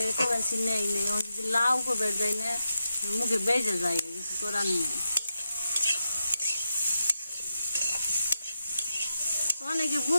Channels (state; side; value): inverted; both; correlation -0.87